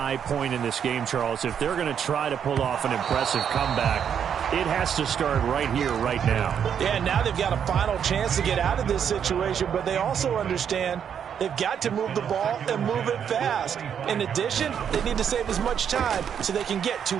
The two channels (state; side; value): quieter; left; 8.2 dB